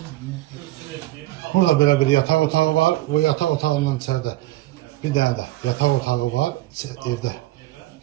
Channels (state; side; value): quieter; left; 16.7 dB